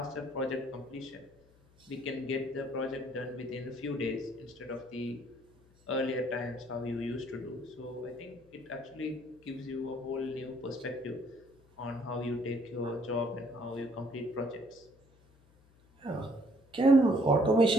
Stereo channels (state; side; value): noise; left; hum, 29 dB below the sound